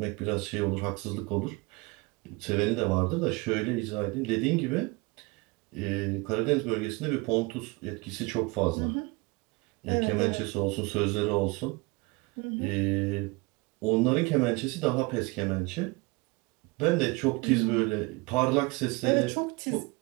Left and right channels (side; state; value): left; quieter; 25.8 dB